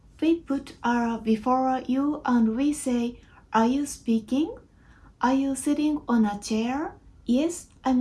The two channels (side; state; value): both; identical; correlation 1.00